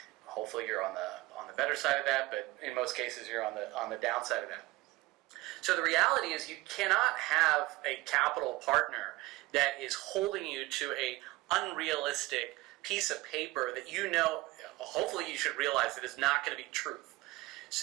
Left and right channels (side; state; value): left; quieter; 19.9 dB